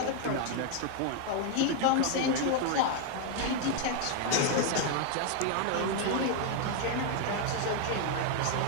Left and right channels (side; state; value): both; different; correlation 0.01